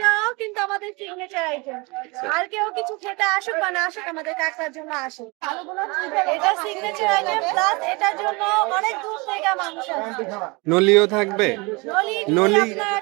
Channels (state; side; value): quieter; left; 26.9 dB